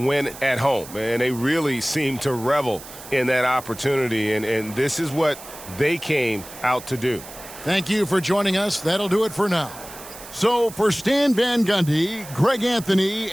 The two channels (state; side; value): noise; right; hiss, 15 dB below the sound